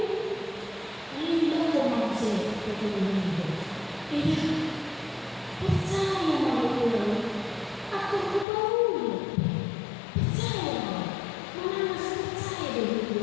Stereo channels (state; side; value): drops out; right; at 8.5 s